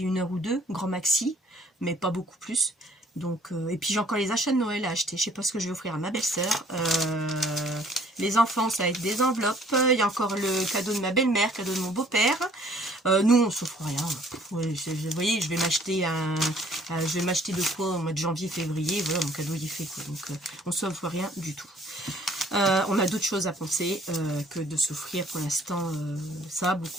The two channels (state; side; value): normal; both; correlation 0.58